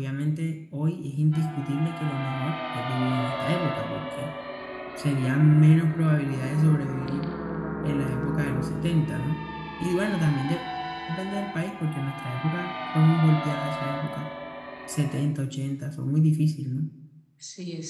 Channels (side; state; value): both; identical; correlation 1.00